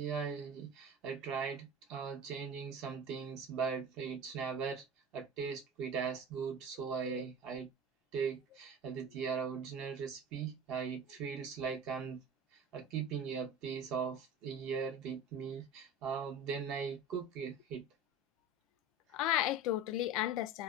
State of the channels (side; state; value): both; normal; correlation 0.33